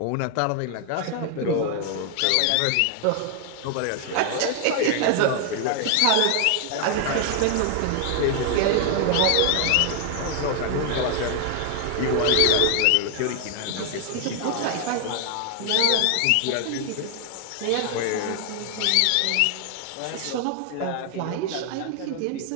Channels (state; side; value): different; both; correlation 0.00